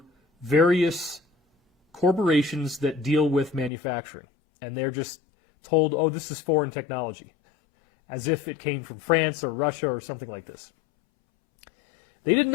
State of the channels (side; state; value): right; drops out; at 3.7 s